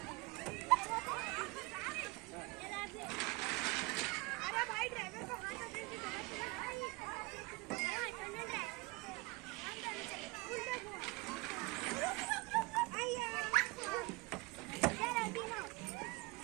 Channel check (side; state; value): left; quieter; 24.4 dB